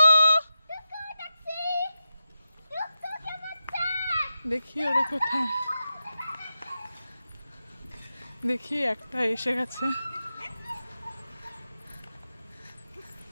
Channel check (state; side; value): inverted; both; correlation -0.90